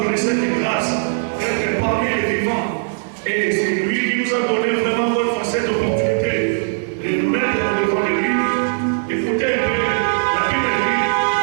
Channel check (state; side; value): silent; left; digital silence